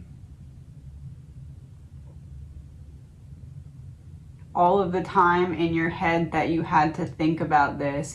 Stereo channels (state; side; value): identical; both; correlation 1.00